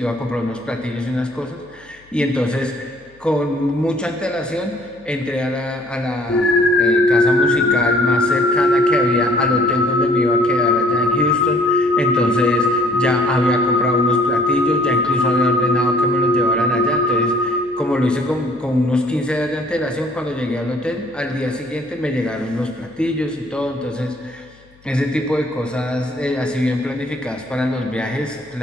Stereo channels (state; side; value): noise; left; hum, 29 dB below the sound